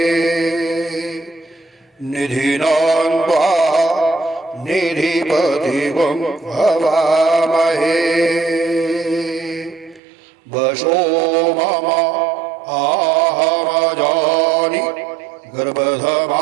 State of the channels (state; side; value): drops out; left; at 10.0 s